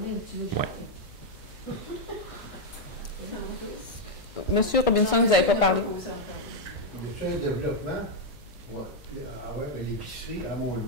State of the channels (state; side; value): noise; left; hum, 20 dB below the sound